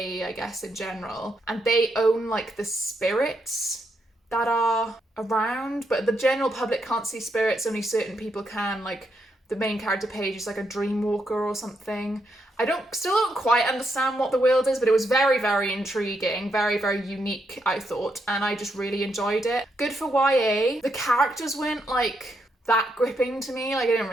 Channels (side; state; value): both; normal; correlation 0.79